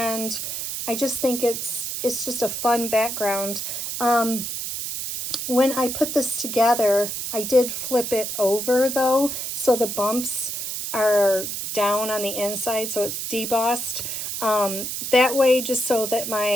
I just think it's just a fun background. When I put this together, I did flip it over though, so the bumps are down on the inside, so it's debossed. That way, just so that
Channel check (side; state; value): right; noise; hiss, 4 dB below the sound